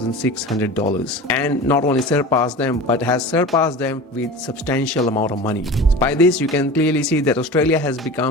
and not only surpassed them but has surpassed them with substantial amount of money. By this you can clearly see that Australia has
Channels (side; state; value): both; normal; correlation 0.34